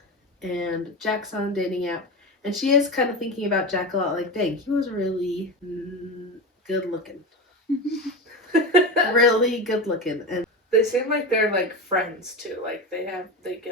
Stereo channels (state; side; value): normal; both; correlation 0.21